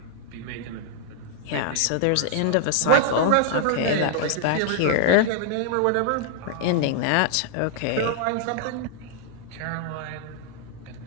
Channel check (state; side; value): different; both; correlation -0.01